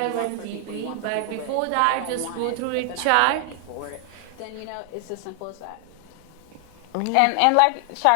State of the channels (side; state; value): both; different; correlation 0.00